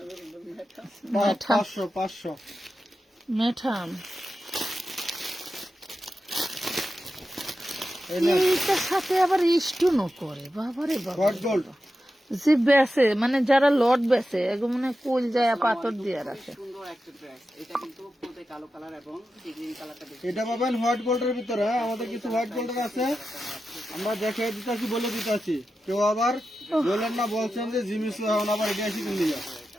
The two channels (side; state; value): both; normal; correlation 0.91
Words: মেঠা 500 মেঠাম এই নেন। এইটার সাথে আবার স্টোনও করে, বাবারে বাবা। হট গোল্ড যে বেসে, মানে যারা লট বেসে, এগুলো মানে কোল যায় পাথর দিয়ে রাখে। সুন্দর একটা ড্রেস। এটা কিন্তু পুরোতে কালো কালার এবং গ্রিন কালারটা বেশি। এটা পাবেন হোয়াইট গোল্ডের ভিতরে। হ্যাঁ, আমাদের কিছু হোয়াইট গোল্ডের আছে, আমরা দেখে দিতেছি, বলে দিতেছি। কেউ আবার বলেন না, বলছেন যে জিমিস এখন আবার এটা এসে কিনে যা,